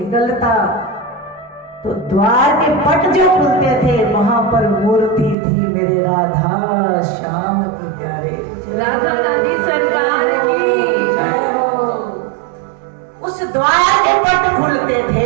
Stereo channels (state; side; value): drops out; left; at 5.4 s